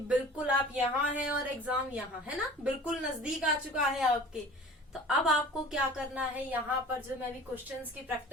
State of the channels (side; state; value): both; normal; correlation 0.43